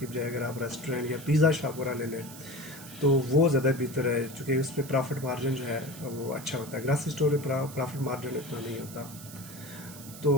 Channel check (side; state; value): right; noise; hiss, 15 dB below the sound